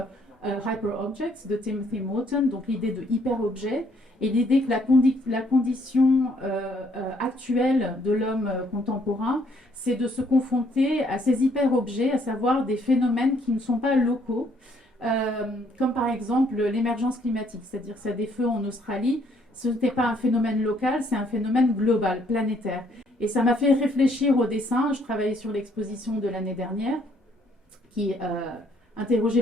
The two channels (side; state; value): both; normal; correlation 0.67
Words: Hyper Objects de Timothy Morton, donc l'idée de hyper-objet et l'idée que la condition actuelle de l'homme contemporain, c'est de se confronter à ces hyper-objets, à savoir des phénomènes qui ne sont pas locaux, comme par exemple l'émergence climatique, c'est-à-dire que ça des feux en Australie, ce n'était pas un phénomène local, c'est un phénomène global, planétaire. Et ça m'a fait réfléchir au dessin. Je travaillais sur l'exposition de l'année dernière qui